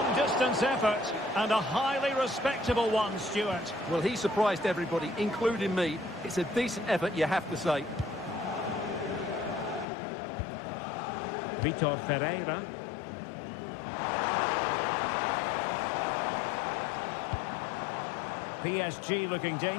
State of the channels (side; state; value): right; drops out; at 9.9 s